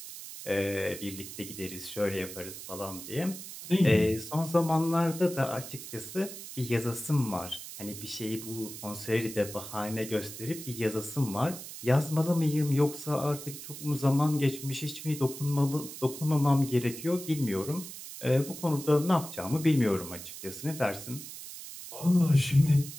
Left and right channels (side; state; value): right; noise; hiss, 11 dB below the sound